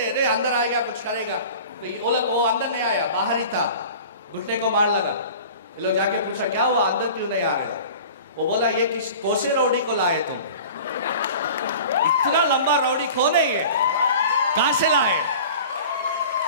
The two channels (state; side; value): inverted; both; correlation -0.41